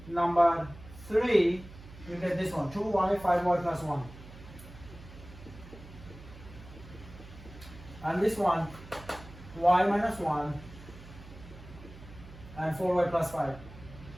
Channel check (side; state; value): right; noise; hum, 17 dB below the sound